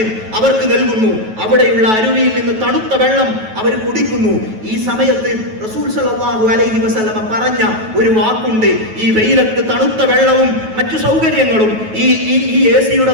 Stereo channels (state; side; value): late; left; 9.2 ms